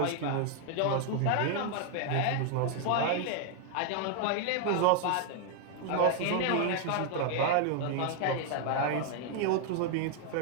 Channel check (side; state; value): both; different; correlation 0.00